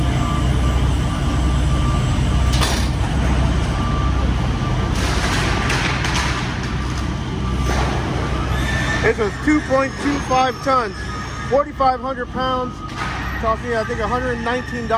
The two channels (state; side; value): identical; both; correlation 1.00